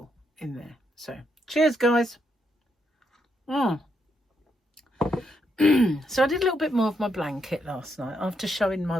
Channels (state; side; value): normal; both; correlation 0.78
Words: in there. So cheers, guys. So I did a little bit more of my blanket last night after showing my